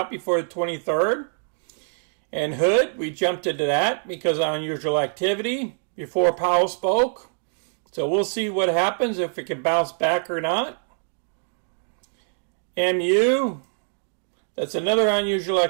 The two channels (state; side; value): silent; left; digital silence